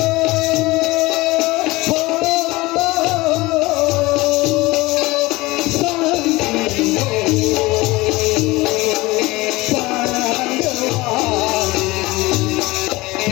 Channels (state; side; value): quieter; right; 20.9 dB